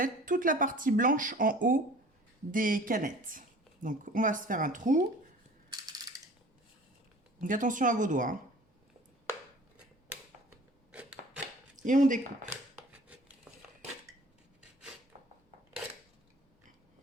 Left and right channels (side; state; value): both; normal; correlation 0.46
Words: toute la partie blanche en haut des canettes. Donc on va se faire un trou. Donc attention à vos doigts, hein. Et on découpe.